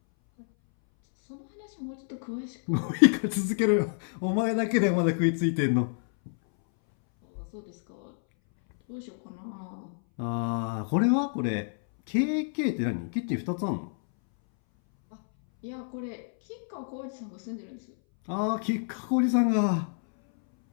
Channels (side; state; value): right; silent; 59 dB below the other